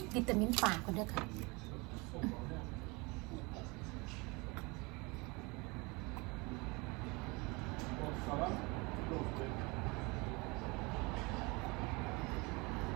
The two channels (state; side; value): quieter; left; 26.8 dB